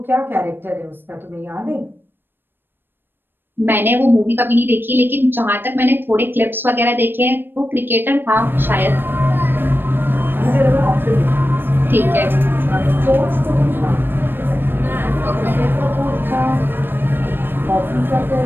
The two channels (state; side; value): late; left; 0.097 ms